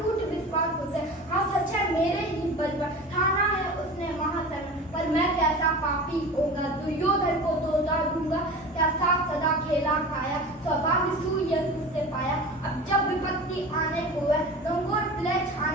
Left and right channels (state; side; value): normal; both; correlation 0.34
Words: विश्वास उसे। हाँ सच है मेरे ही बल पर ठाना है उसने महासन। पर मैं कैसा पापी होगा, दुर्योधन को तो उतार दूंगा। क्या साथ सदा खेला खाया, सौभाग्य सूर्य उससे पाया। अब जब विपत्ति आने को है, लंगोर प्ले